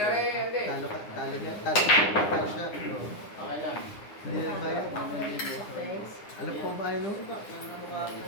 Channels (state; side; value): late; right; 9.8 ms